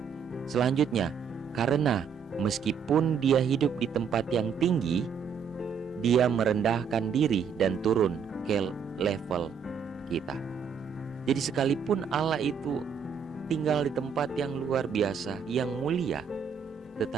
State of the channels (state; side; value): quieter; left; 6.8 dB